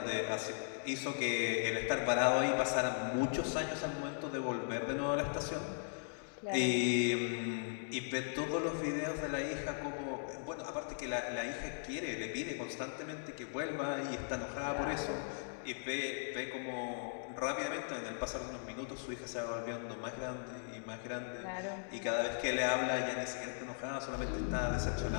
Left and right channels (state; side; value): silent; right; digital silence